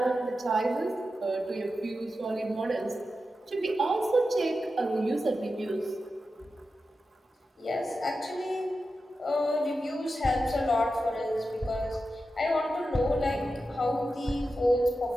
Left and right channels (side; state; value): both; normal; correlation 0.91